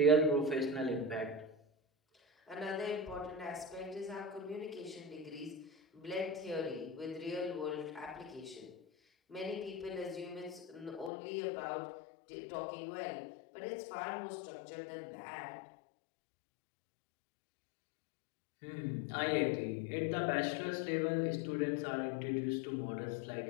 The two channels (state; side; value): drops out; right; at 11.1 s